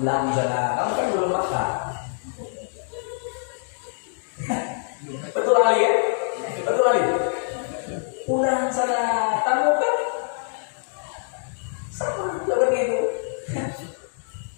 sana, kamu kan belum makan. Betul Ali ya? Betul Ali. Pulang sana, kamu kan sama seperti itu.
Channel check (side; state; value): right; silent; digital silence